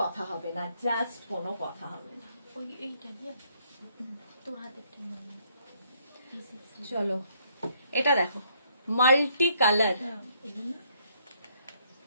কথা হবে না, জাস্ট কোনো কথা হবে না। ওই এইটা দিয়ে তোর হাতে একটা চলো এটা দেখো, মাল্টি কালার,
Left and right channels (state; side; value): inverted; both; correlation -0.69